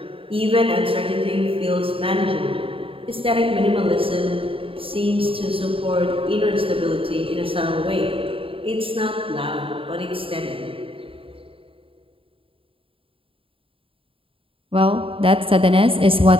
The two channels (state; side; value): late; left; 0.26 ms